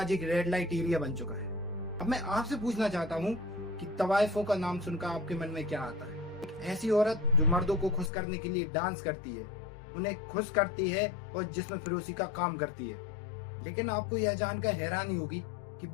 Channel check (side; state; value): right; drops out; at 8.1 s